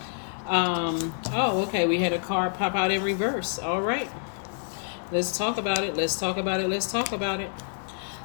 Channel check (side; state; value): right; silent; 56 dB below the other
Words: Okay, we had a card pop out in reverse. All right, let's talk about it. Let's talk about it. Let's talk about it.